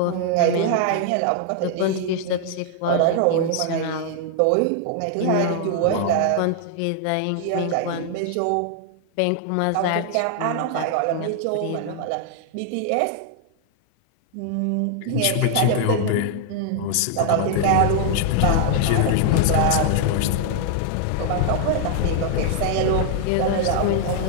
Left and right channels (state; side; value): different; both; correlation 0.00